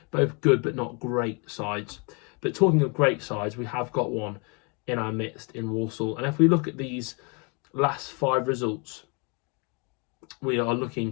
Both good but not great sides. But talking of great sides, we have got one in our midst in Walsall. And if we look at these last 5 results, we are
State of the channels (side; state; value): right; quieter; 32.4 dB